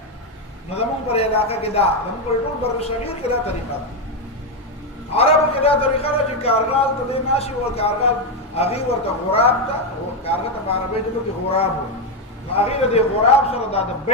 نو زمونږ پر علاقه کې دا زمونږ پر ټول بر صغیر کې دا طریقه ده. عربو کې دا طریقه ده چې کارغال ته دی ناشي و کارغال هغې ورته غراب ته کارغه ته په عربۍ ژبه کې غراب و. نو هغې د دې غراب سره دا د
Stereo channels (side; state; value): both; normal; correlation 0.06